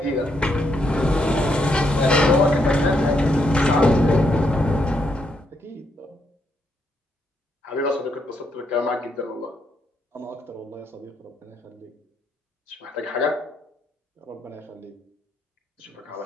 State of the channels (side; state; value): both; normal; correlation 0.77